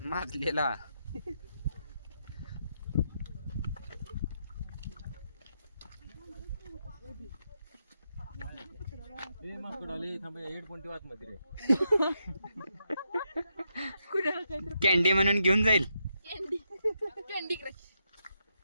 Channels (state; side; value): inverted; both; correlation -0.82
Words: माजलेला. हेडफोन ठेवा मध्ये रे कॅन्डी म्हणून घेऊन जाईल. Candy crush